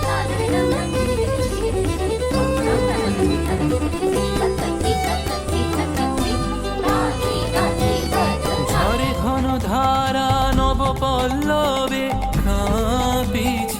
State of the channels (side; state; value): both; identical; correlation 1.00